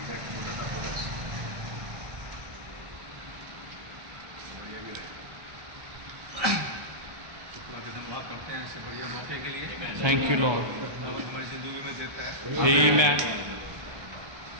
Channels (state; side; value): late; left; 1.3 ms